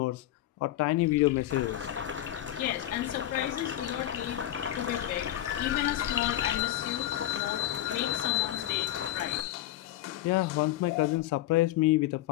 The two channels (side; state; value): right; quieter; 13.6 dB